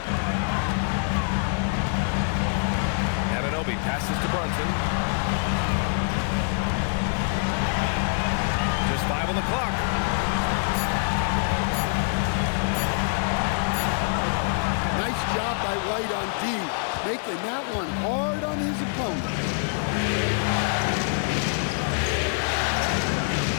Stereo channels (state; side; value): silent; right; 62 dB below the other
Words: Anunoby passes to Brunson. Just 5 on the clock. Nice job by White on D, making that one hard on his opponent.